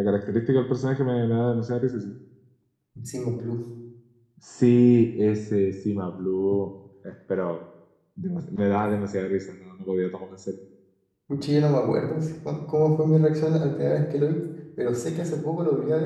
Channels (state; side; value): identical; both; correlation 1.00